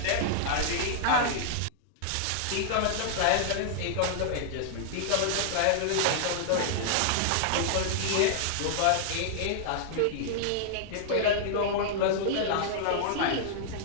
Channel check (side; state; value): both; different; correlation -0.01